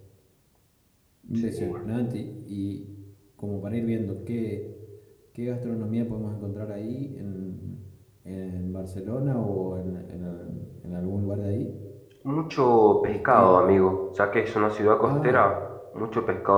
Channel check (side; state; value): both; identical; correlation 1.00